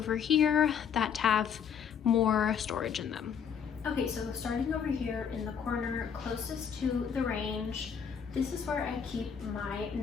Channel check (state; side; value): quieter; right; 7.4 dB